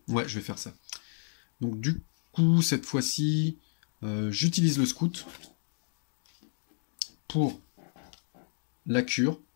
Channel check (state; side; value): silent; right; digital silence